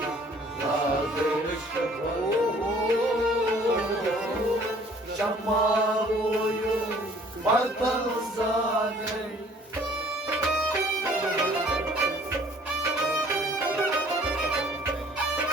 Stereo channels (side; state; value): both; normal; correlation 0.55